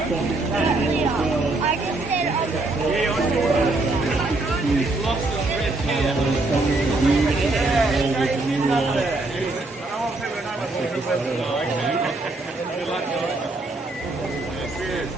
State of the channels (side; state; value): left; quieter; 3.0 dB